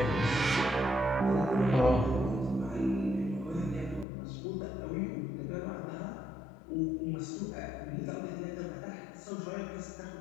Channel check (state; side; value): drops out; right; at 4.0 s